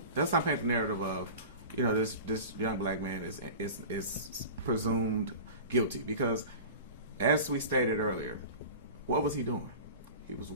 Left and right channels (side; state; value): both; inverted; correlation -0.35